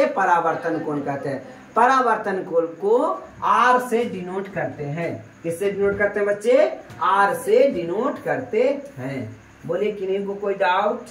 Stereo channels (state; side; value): identical; both; correlation 1.00